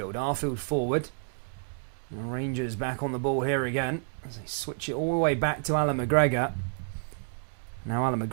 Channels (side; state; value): left; silent; 58 dB below the other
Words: Arfield forward. And Rangers back on the ball here again. As they switch it all the way back to Alan McGregor. Now Alan